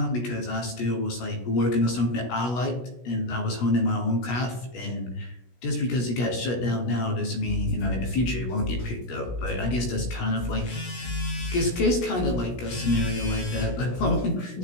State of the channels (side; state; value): right; late; 16 ms